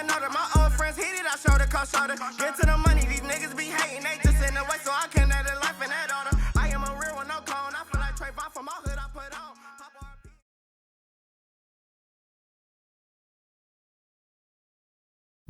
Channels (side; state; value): both; identical; correlation 1.00